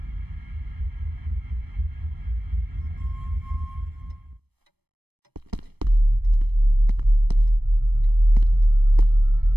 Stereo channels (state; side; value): late; left; 0.98 ms